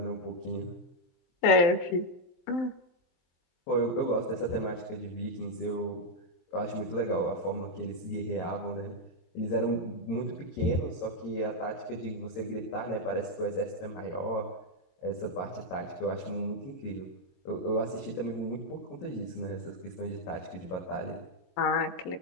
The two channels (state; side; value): late; right; 23 ms